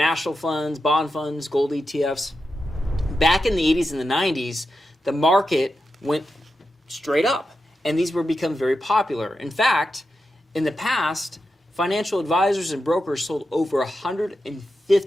funds, bond funds, gold ETFs. Back in the 80s and the 90s, the market went straight up, and these were become very popular. In fact, in the past, financial advisors and brokers sold over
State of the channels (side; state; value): both; normal; correlation 0.89